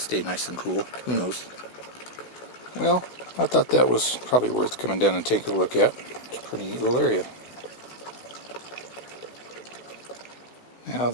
nice and cool. Who knows? Well, I thought that was probably worth coming down and taking a look at. It's a pretty neat little area. Now,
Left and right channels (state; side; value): late; right; 16 ms